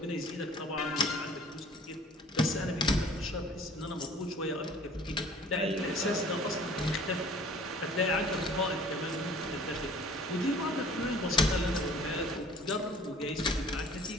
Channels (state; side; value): normal; both; correlation 0.49